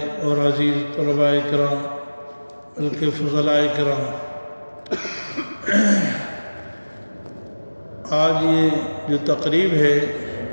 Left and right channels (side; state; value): both; inverted; correlation -1.00